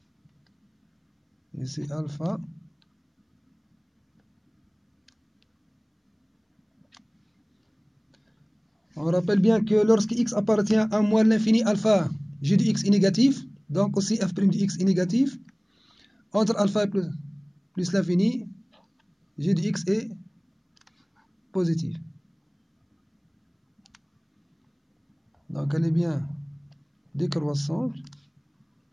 ici alpha On rappelle bien que lorsque x appartient à moins l'infini alpha, g de x est négatif, donc aussi f' de x est négatif. Entre alpha plus l'infini, g de x est positif. Donc elle est bien décroissante.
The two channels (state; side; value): identical; both; correlation 1.00